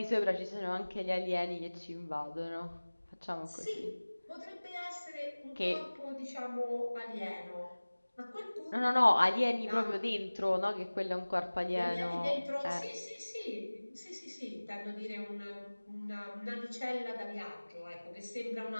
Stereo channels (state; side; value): inverted; both; correlation -1.00